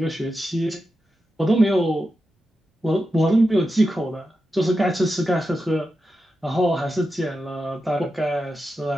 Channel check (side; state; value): both; normal; correlation 0.89